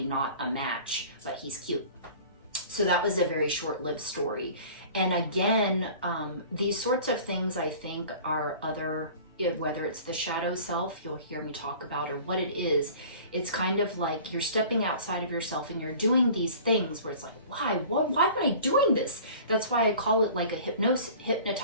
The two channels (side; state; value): both; inverted; correlation -0.44